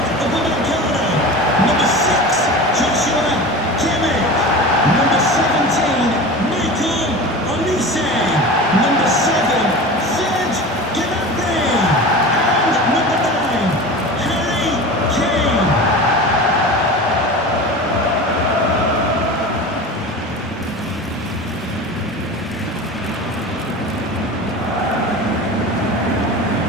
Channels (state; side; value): normal; both; correlation 0.32